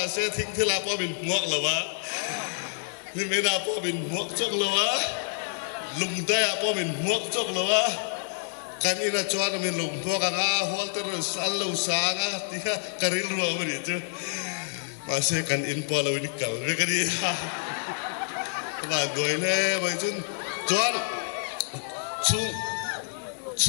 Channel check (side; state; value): right; silent; digital silence